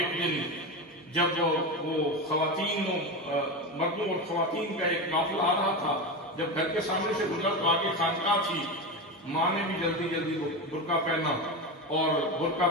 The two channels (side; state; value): both; normal; correlation 0.19